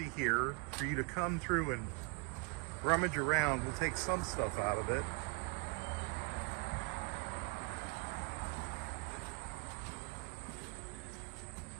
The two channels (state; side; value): quieter; left; 29.1 dB